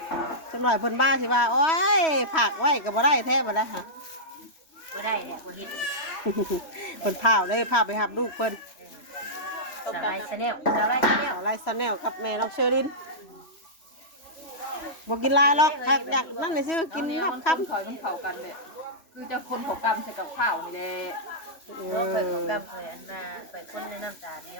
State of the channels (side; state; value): right; late; 3.0 ms